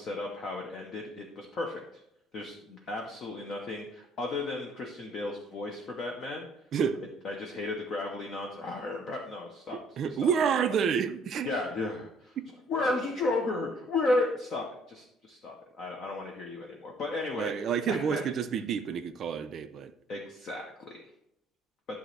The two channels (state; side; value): normal; both; correlation 0.60